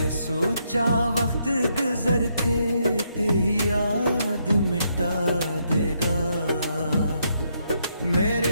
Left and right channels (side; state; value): both; inverted; correlation -0.76